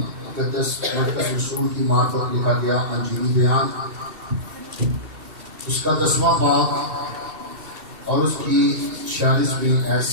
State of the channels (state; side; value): late; left; 2.7 ms